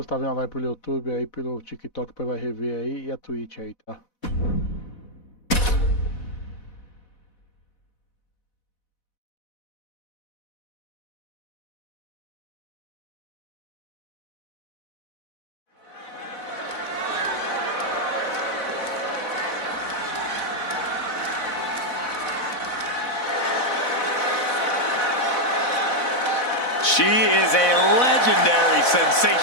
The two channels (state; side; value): late; right; 4.0 ms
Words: tá vendo a live pelo YouTube, aí pelo TikTok, vai rever aí, e a Twitch aí, tá? She is a legendary